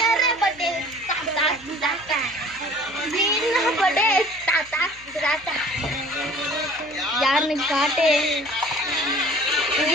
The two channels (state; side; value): noise; left; hum, 25 dB below the sound